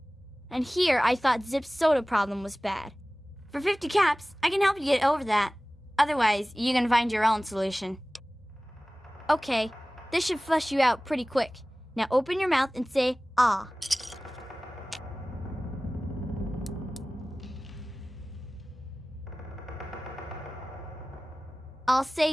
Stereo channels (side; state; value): both; normal; correlation 0.98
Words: And here I thought Zip's soda problem was bad. For 50 caps, I can help you get over that. Otherwise, you can find your own solution. Okay, this should flush you out pretty quick. Now open your mouth and say, ah. I'll